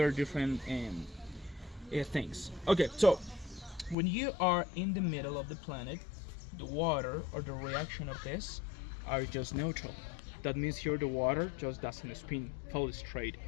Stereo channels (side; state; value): right; drops out; at 4.0 s